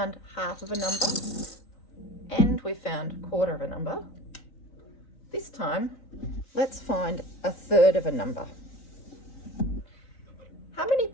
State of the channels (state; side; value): late; right; 4.1 ms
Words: half of a number and we've found a quarter of a number. This time, let's find a third of a number. How many